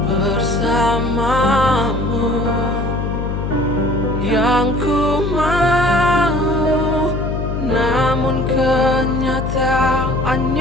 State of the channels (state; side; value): noise; left; hum, 3 dB below the sound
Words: bersamamu. Yang ku mau, namun